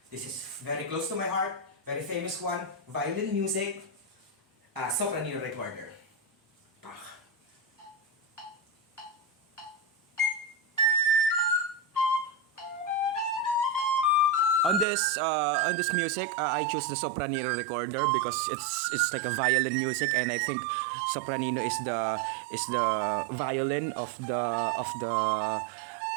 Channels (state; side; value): drops out; left; at 14.9 s